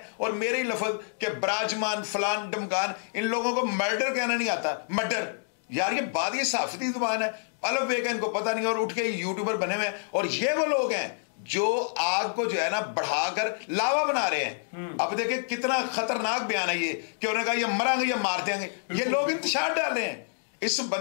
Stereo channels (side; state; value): right; silent; digital silence